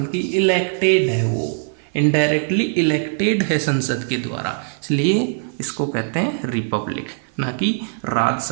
इलेक्टेड है, वो इनडायरेक्टली इलेक्टेड है संसद के द्वारा। इसलिए इसको कहते हैं रिपब्लिक, ना कि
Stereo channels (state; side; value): silent; left; 55 dB below the other